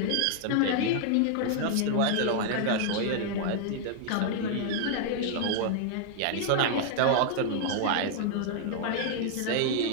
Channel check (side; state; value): both; different; correlation 0.00